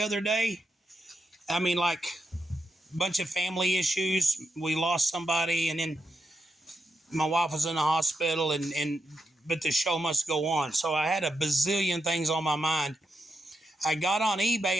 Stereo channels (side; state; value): both; normal; correlation 0.84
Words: day. I mean, like a bunch of family issues. We lost somebody, and then my wife was in the hospital, but the show must go on. So I had a bazillion things on my mind. I got on